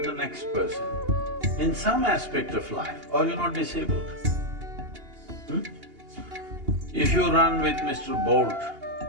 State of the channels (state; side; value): late; left; 2.8 ms